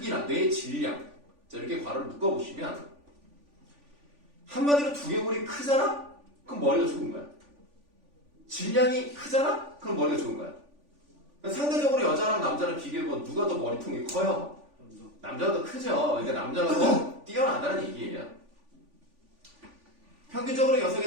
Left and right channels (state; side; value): late; left; 3.5 ms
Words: 뇌의 질량. 자, 이렇게 괄호를 묶어보시면 한마디로 두개골이 크잖아? 그럼 머리가 좋은 거야. 질량이 크잖아? 그럼 머리가 좋은 거야. 상대적으로 여자랑 남자를 비교해보면 누가 더 머리통이 커요? 남자가 더 크죠. 그러니까 남자가 더 뛰어나다는 얘기예요. 평균적으로